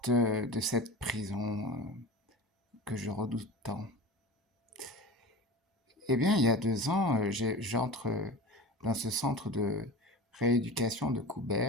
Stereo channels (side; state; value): both; normal; correlation 0.32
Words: de cette prison que je redoute tant? Eh bien, il y a 2 ans, j'entre dans ce centre de rééducation de